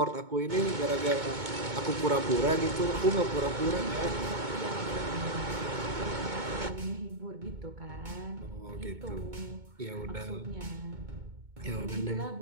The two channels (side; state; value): left; late; 2.2 ms